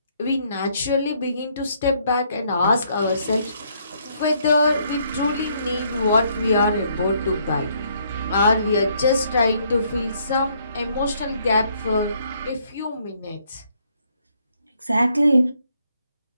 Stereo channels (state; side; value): inverted; both; correlation -0.69